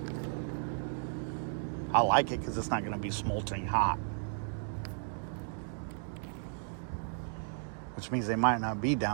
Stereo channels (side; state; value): left; silent; digital silence